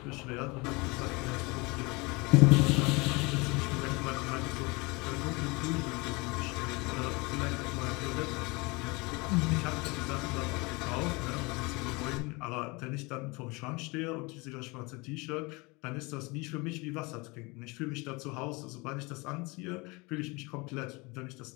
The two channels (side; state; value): right; quieter; 26.3 dB